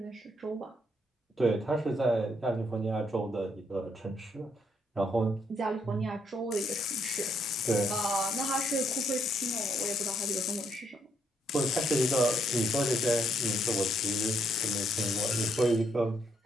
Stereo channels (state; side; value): normal; both; correlation 0.73